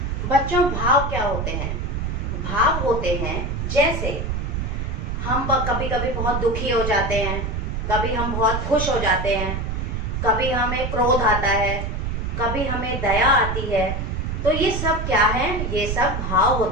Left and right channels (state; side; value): noise; right; rumble, 2 dB below the sound